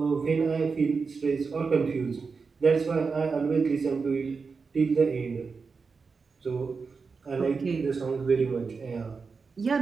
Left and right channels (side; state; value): left; quieter; 4.9 dB